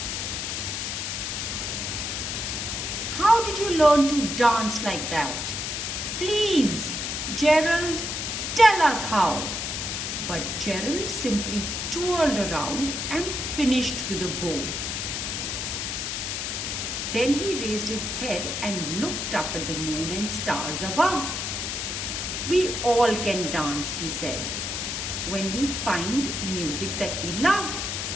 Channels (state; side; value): noise; left; hiss, 3 dB below the sound